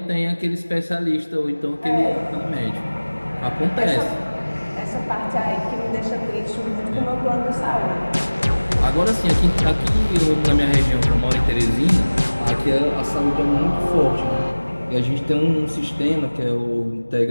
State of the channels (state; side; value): inverted; both; correlation -1.00